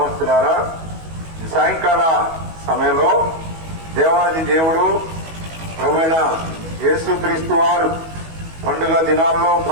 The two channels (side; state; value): left; late; 19 ms